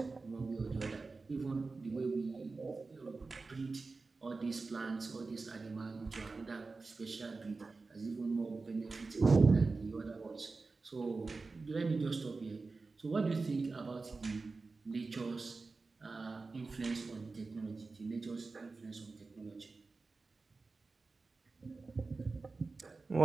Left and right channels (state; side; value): quieter; left; 3.9 dB